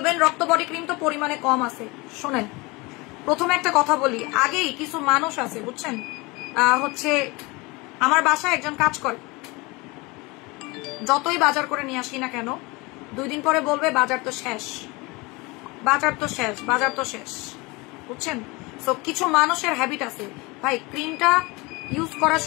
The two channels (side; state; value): right; quieter; 25.0 dB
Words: রক্ত বডি ক্রিম তো পরিমাণে কম আছে। শোনেন প্রথমে একটা কথা বলি, আগেই কিছু মানুষ আছে বুঝছেন, হচ্ছে আমার বাসায় একজন কাজ করে, যতই বাজার করে নিয়ে আসি না কেন 2 দিন পরে বলবে বাজার তো শেষ, বাজার তো শেষ, বাজার তো শেষ, বুঝছেন। সো কিছু মানুষের হ্যাবিট আছে, ভাই ক্রিমটা ইউজ করা